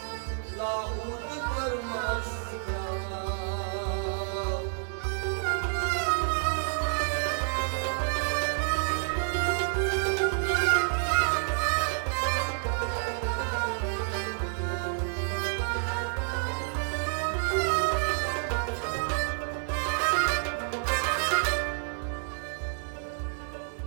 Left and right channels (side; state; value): left; silent; digital silence